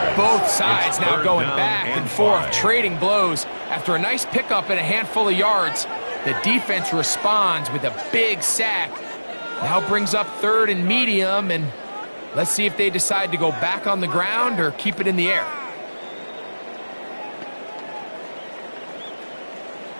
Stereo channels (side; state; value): both; inverted; correlation -1.00